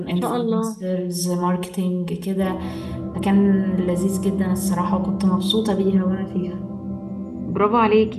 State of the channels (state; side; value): identical; both; correlation 1.00